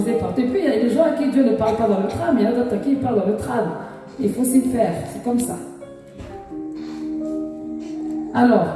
partout. Et puis, il y a des gens à qui Dieu ne parle pas dans le tram, il y a d'autres à qui il parle dans le tram. Il faut s'y faire, c'est comme ça. Alors,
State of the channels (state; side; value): identical; both; correlation 1.00